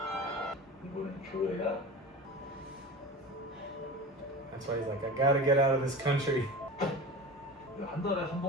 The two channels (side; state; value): both; normal; correlation 0.32